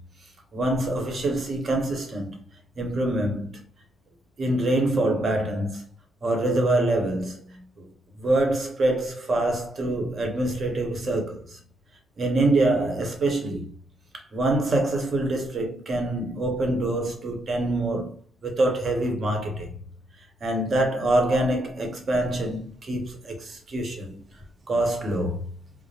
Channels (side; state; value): both; normal; correlation 0.77